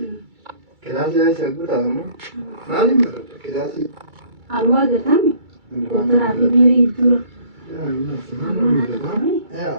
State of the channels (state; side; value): late; left; 2.3 ms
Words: كلاسي هاي سأقول تامو ما لي مرة كلاسي الواقع تامي ترى في بيري الدور يا الناس ما نقول